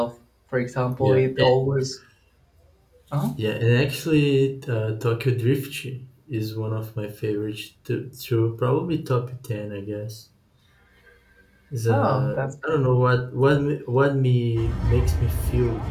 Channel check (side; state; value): both; identical; correlation 1.00